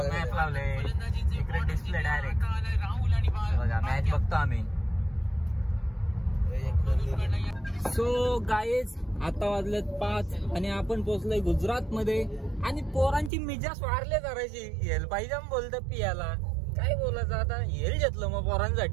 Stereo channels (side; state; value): left; drops out; at 13.3 s